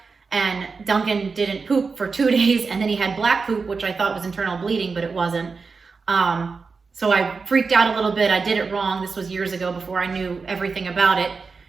And Duncan didn't poop for 2 days, and then he had black poop, which I thought was internal bleeding, but it wasn't. So I freaked out a little bit. I did it wrong. This was years ago before I knew everything about it.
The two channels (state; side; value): quieter; left; 4.7 dB